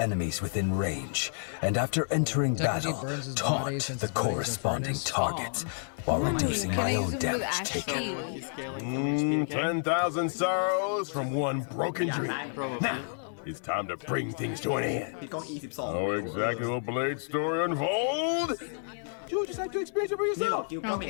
within range, and after entering battle, taunt the corresponding targets, while reducing my own damage taken. 10,000 sorrows from one broken dream. Now, it's time to bring things to an end. How exactly will Blade's story unfold? You expect to experience it for yourself.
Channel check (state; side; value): silent; right; 58 dB below the other